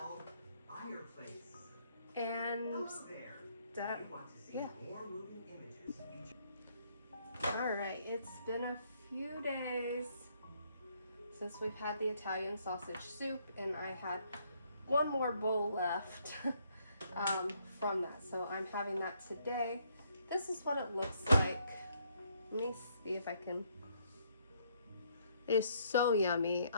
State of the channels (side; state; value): both; inverted; correlation -0.70